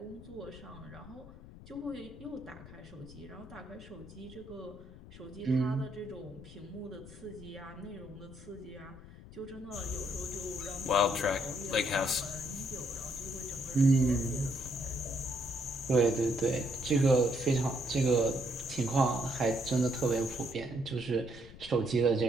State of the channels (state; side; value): noise; left; rumble, 17 dB below the sound